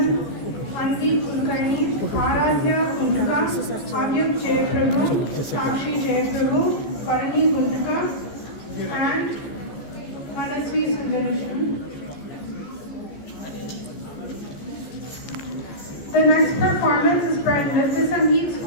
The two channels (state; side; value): late; right; 14 ms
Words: Anvi Kulkarni, Aradhya Guntuka, Avyuk Jayaprabhu, Sakshi Jayaprabhu, Parani Guntuka, and Manasvi Sundarishan. The next performance is by Nritya Sangeet